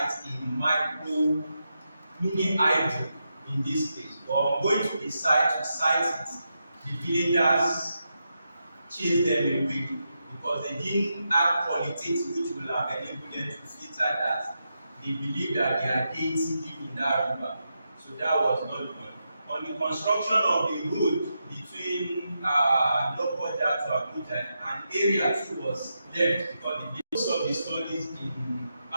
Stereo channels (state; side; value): inverted; both; correlation -0.86